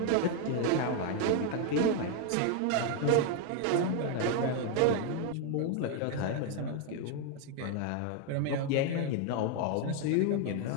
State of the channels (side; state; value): both; different; correlation 0.01